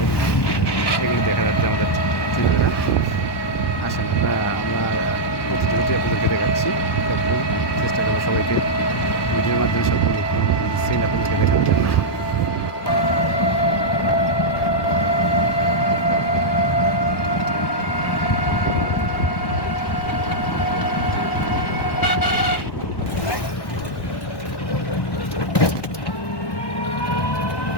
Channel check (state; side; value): late; right; 1.1 ms